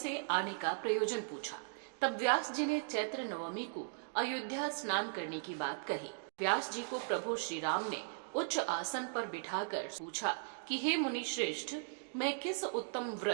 आने का प्रयोजन पूछा। तब व्यास जी ने चैत्र नवमी को अयोध्या स्नान करने की बात कही। व्यास जी को प्रभु श्री राम ने उच्च आसन पर बिठाकर पूछा कि हे मुनि श्रेष्ठ, मैं किस उत्तम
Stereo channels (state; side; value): silent; left; digital silence